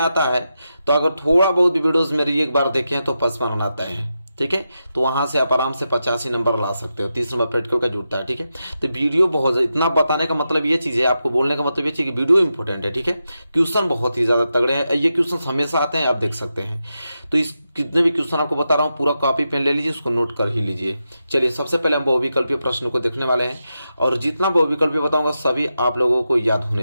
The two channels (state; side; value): inverted; both; correlation -0.88